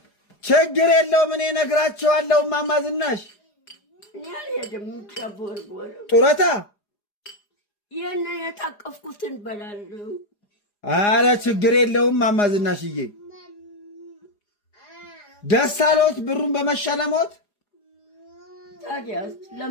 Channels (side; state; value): right; late; 4.9 ms